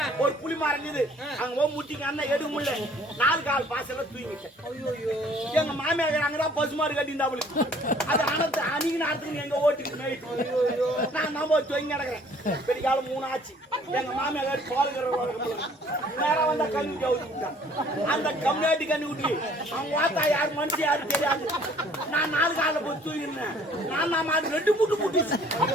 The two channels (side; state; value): both; normal; correlation 0.56